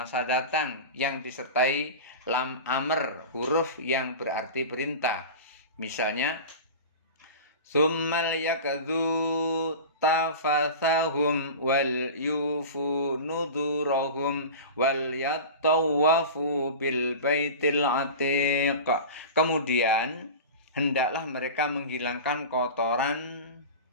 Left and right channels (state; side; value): inverted; both; correlation -0.31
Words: datang yang disertai lam amr, huruf yang berarti perintah. Misalnya, Tsummal yakadzu tafathahum wal yufu nudurahum wal yattawafu bil baitil atiq. Kemudian hendaklah mereka menghilangkan